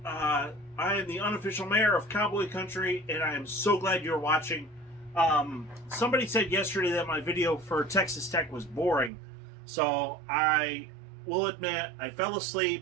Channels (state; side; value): drops out; left; at 9.1 s